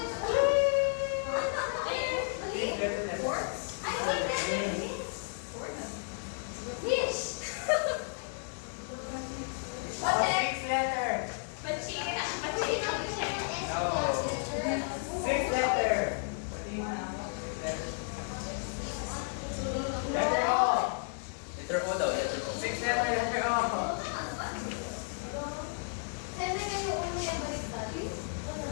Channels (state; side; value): silent; right; 56 dB below the other